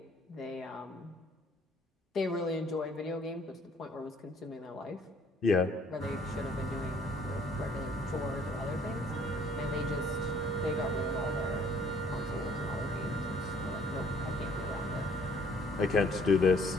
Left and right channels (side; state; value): both; normal; correlation 0.59